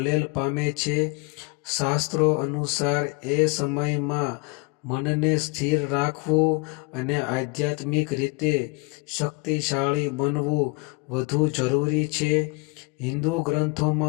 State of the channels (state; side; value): quieter; right; 28.2 dB